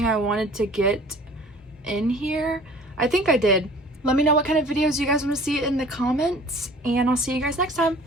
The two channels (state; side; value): normal; both; correlation 0.48